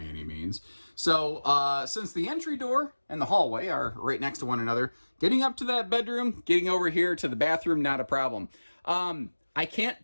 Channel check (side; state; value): both; inverted; correlation -1.00